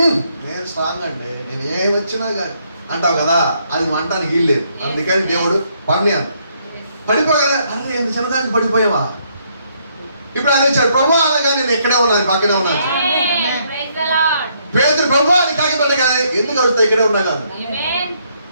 నేను స్ట్రాంగ్ అండి, నేను ఏమి వచ్చినా కానీ అంటావు కదా, అది మంటానికి వీల్లేదు. అందుకని దేవుడు పని అంట. పడిపోగానే అరే ఎంత చిన్నదానికి పడిపోయావా? ఇప్పుడు అది వచ్చాడు ప్రభు అనగా నేను ఎక్కడే ఉన్నాను, పక్కనే ఉన్నాను. పేదరు ప్రభు అని కాకిపడ్డగానే ఎందుకు అడుగుతా ఇక్కడే ఉన్నా కాదు,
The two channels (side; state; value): both; inverted; correlation -0.71